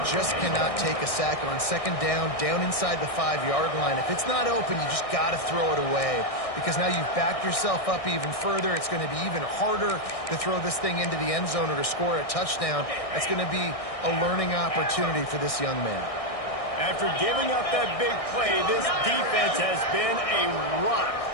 just cannot take a sack on. Second down inside the 5-yard line. If it's not open, you just got to throw it away because now you've backed yourself up even further. It's going to be even harder to throw this thing into the end zone or to score a touchdown. That's going to be a learning opportunity for this young man. After giving up that big play, this defense has been a rock.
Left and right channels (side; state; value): right; late; 1.6 ms